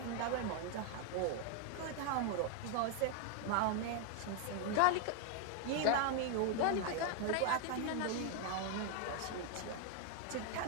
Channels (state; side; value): different; both; correlation 0.00